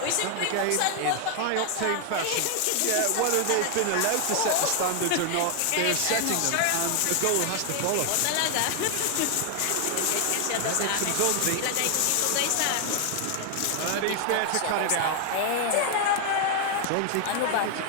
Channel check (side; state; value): both; different; correlation 0.00